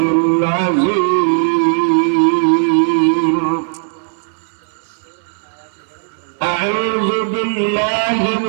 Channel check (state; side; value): silent; left; digital silence